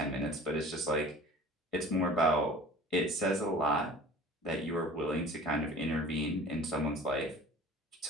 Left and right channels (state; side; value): normal; both; correlation 0.44